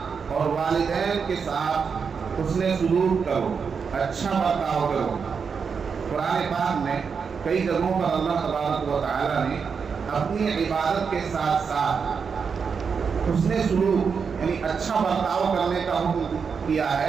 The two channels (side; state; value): left; quieter; 5.9 dB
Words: اور والدین کے ساتھ حسن سلوک کرو، اچھا برتاؤ کرو. قرآن پاک میں کئی جگہوں پر اللہ تبارک و تعالی نے اپنی عبادت کے ساتھ ساتھ حسن سلوک یعنی اچھا برتاؤ کرنے کا حکم کیا